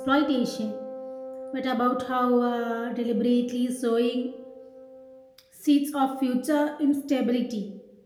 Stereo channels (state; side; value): identical; both; correlation 1.00